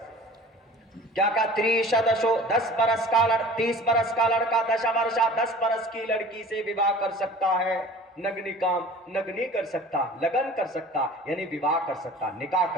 کیا کہا؟ تریشدشو 10 برس کا 30 برس کا لڑکا، دشا ورشا 10 برس کی لڑکی سے وواہ کر سکتا ہے۔ نگ نہیں کر سکتا، لگن کر سکتا یعنی وواہ کر سکتا، نکاح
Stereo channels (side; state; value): both; normal; correlation 0.43